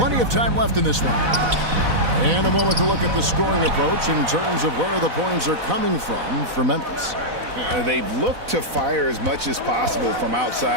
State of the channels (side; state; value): left; late; 4.0 ms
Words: of time left in this one. And a moment to look at the scoring approach in terms of where the points are coming from for Memphis. They've looked to fire as much as possible from